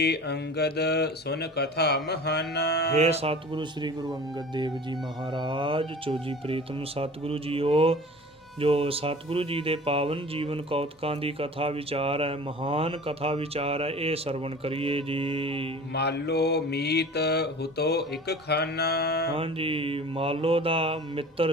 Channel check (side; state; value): both; normal; correlation 0.41